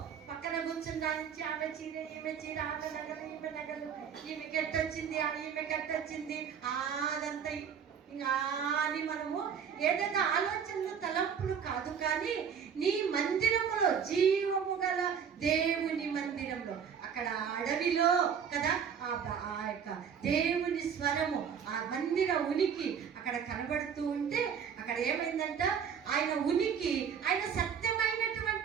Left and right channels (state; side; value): quieter; left; 7.4 dB